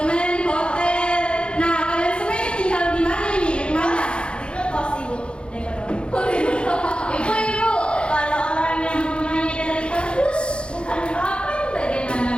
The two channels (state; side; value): late; right; 0.056 ms